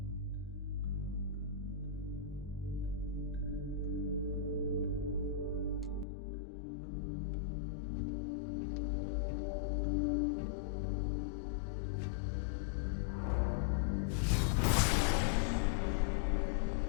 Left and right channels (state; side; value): drops out; right; at 6.1 s